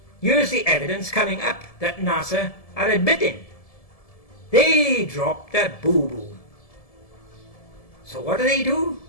here's the evidence coming up that NASA are admitting. They dropped a boo-boo. So what do?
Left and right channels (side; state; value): right; late; 1.7 ms